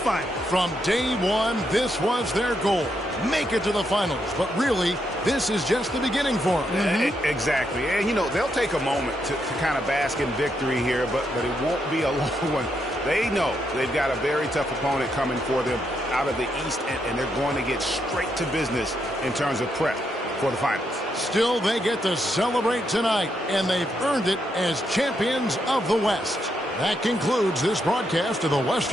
From day one, this was their goal. Make it to the finals. But really, this is just the beginning for them. Exactly. And, you know, they'll take a moment to kind of bask in victory here, but it won't be a long one. They know they've got a very tough opponent coming for them out of the East, and they're going to get straight to business in terms of prep for the finals. Still, they get to celebrate tonight, and they've earned it as champions of the West. That concludes this broadcast of the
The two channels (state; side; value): normal; both; correlation 0.79